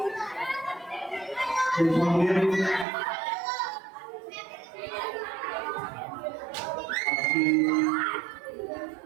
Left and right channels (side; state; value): left; drops out; at 2.9 s